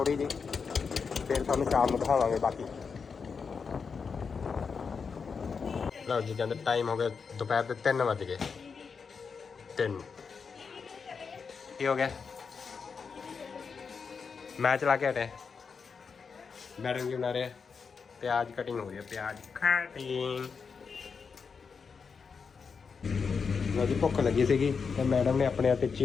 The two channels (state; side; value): quieter; right; 5.6 dB